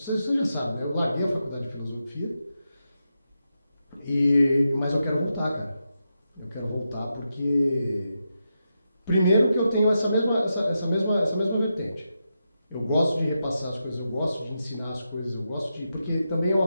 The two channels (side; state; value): both; inverted; correlation -0.87